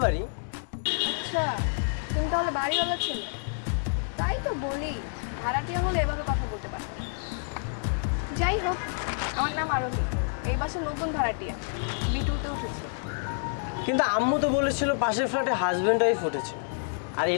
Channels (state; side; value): silent; right; digital silence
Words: বাড়ি। আচ্ছা, তুমি তাহলে বাড়িওয়ালা ছেলে? তাই তো বলি, ভাড়াটিয়া হলে এভাবে কথা বলতে পারো। যাই হোক, আমার নাম আরোহী, এই বাসার নতুন ভাড়াটিয়া, বিটুতে উঠেছে। কিন্তু আম্মু তো বলেছিল পাশের ফ্ল্যাটে হাজব্যান্ড ওয়াইফ উঠেছে, আর